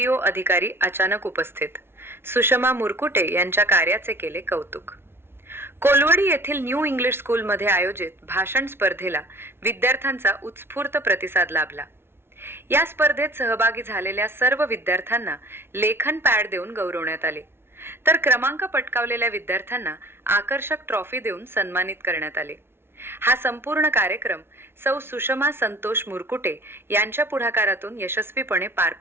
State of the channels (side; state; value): left; late; 0.12 ms